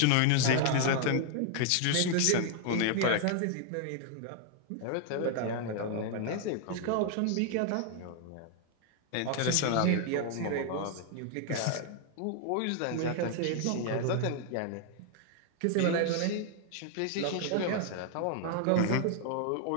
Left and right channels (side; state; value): both; different; correlation 0.00